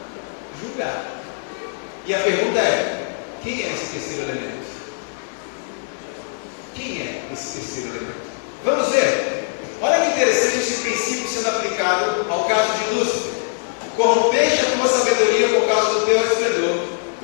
julgar. E a pergunta é: quem é esse terceiro elemento? Quem é esse terceiro elemento? Vamos ver. Olha que interessante esse princípio sendo aplicado ao caso de Lúcifer. Corrompeste a tua sabedoria por causa do teu esplendor.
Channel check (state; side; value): silent; right; digital silence